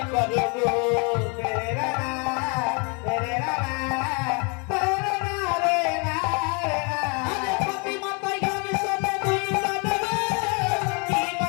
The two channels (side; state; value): right; quieter; 33.3 dB